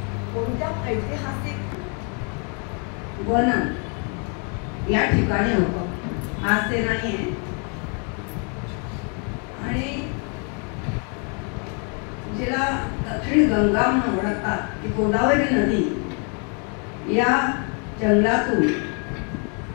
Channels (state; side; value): quieter; right; 38.2 dB